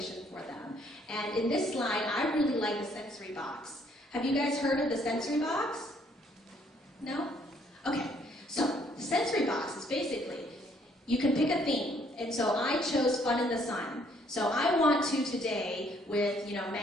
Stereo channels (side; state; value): both; normal; correlation 0.66